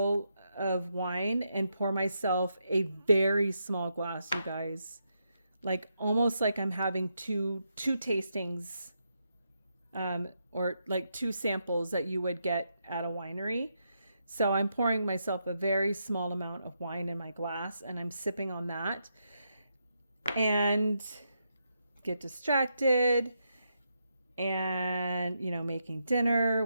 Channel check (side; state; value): both; inverted; correlation -0.82